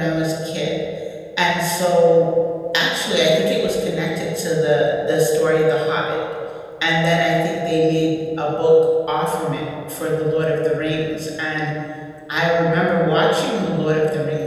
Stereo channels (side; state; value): both; identical; correlation 1.00